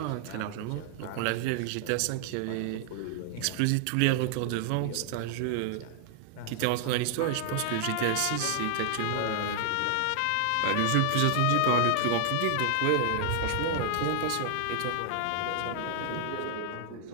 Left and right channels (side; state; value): both; different; correlation 0.00